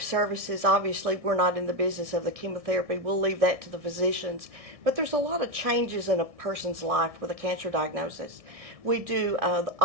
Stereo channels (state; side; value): late; left; 1.6 ms